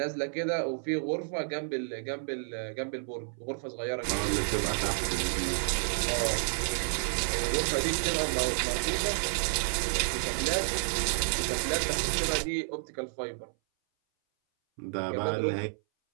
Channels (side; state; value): left; silent; 57 dB below the other